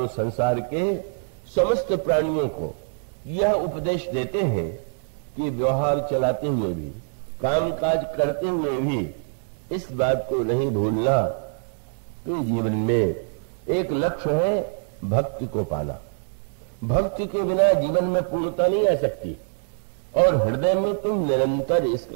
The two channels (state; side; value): silent; left; digital silence